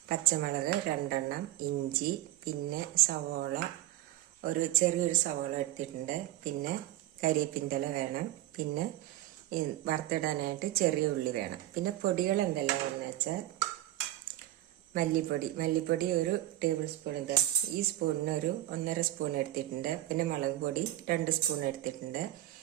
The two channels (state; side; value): quieter; left; 14.6 dB